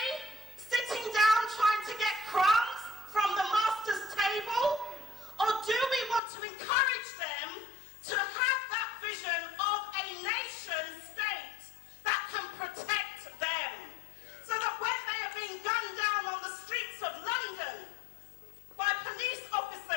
sitting down trying to get crumbs from the master's table? Or do we want to encourage them to have that vision of a nation state that can protect them? So that when they are being gunned down on the streets of London by police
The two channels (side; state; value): right; drops out; at 6.2 s